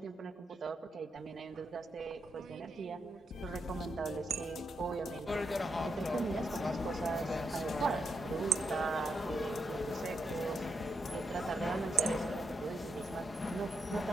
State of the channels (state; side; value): normal; both; correlation 0.82